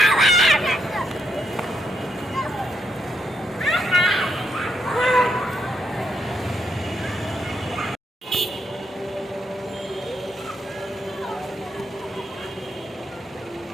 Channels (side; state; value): both; normal; correlation 0.79